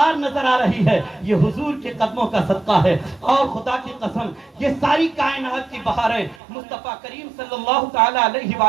نظر آ رہی ہے یہ حضور کے قدموں کا صدقہ ہے، اور خدا کی قسم یہ ساری کائنات کی بہاریں مصطفیٰ کریم صلی اللہ تعالی علیہ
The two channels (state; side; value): drops out; left; at 6.4 s